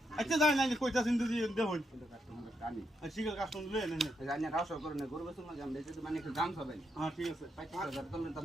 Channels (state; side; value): normal; both; correlation 0.82